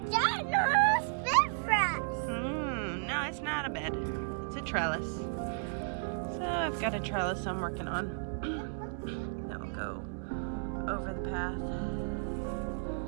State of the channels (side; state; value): left; silent; digital silence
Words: ginormous bed for us. No, it's not a bed. It's a trellis. So I've got a trellis I'm working on. That will go over the path.